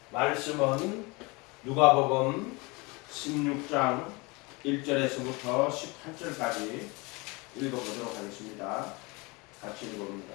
말씀은 누가복음 16장 1절에서부터 18절까지 읽어보도록 하겠습니다. 같이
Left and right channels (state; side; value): quieter; right; 26.3 dB